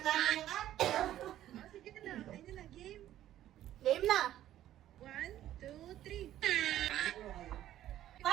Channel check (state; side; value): quieter; left; 12.7 dB